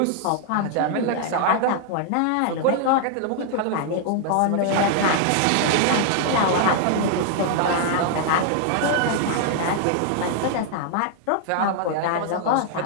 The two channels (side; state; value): both; different; correlation 0.00